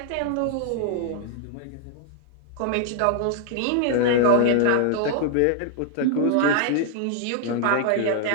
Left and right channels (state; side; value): different; both; correlation -0.01